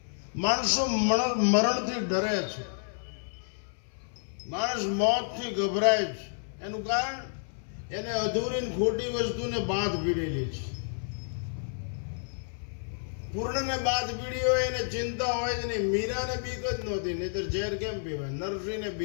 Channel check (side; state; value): right; silent; 58 dB below the other